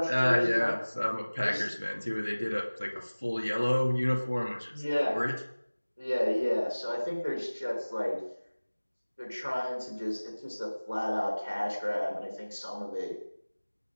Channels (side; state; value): both; inverted; correlation -1.00